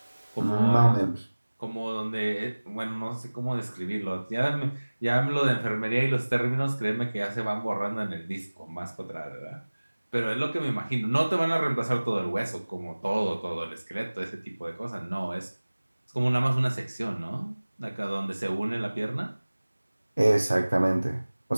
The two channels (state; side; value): inverted; both; correlation -1.00